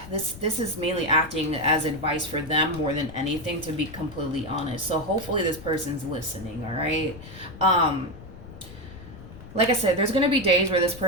This is mainly acting as advice for them more than anything, to be completely honest. So hopefully this person's listening, all right? Like I said, there's going to be days where this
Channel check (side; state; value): left; noise; rumble, 16 dB below the sound